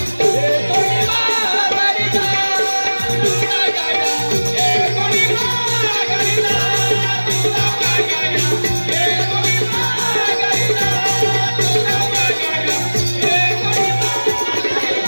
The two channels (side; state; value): both; inverted; correlation -1.00